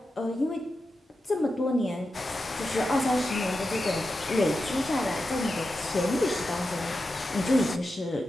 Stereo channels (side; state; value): both; normal; correlation 0.90